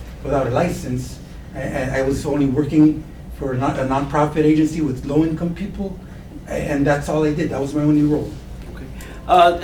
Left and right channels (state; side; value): identical; both; correlation 1.00